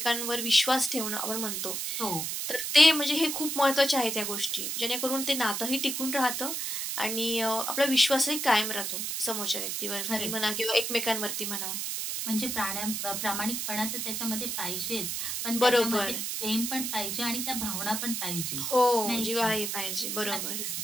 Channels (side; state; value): right; noise; hiss, 2 dB below the sound